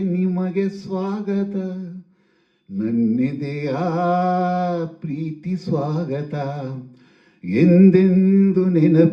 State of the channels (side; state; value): both; identical; correlation 1.00